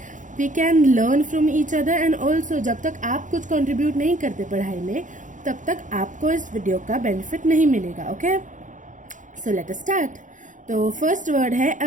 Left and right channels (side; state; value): left; late; 0.37 ms